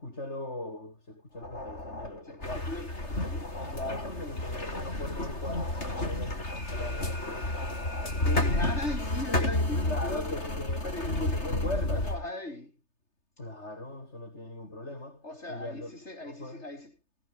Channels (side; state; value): right; late; 3.3 ms